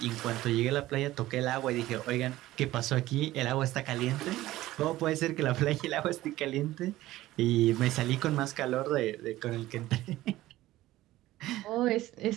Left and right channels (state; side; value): quieter; left; 16.1 dB